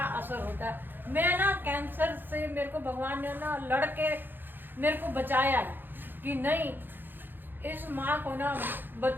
असर होता है। मैं ना कैंसर से मेरे को भगवान ने ना लड़के मेरे को बचाया कि नहीं, इस माँ को ना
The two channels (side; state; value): left; late; 0.095 ms